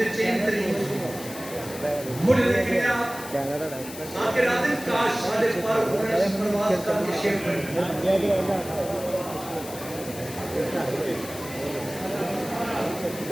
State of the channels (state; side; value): noise; left; hiss, 13 dB below the sound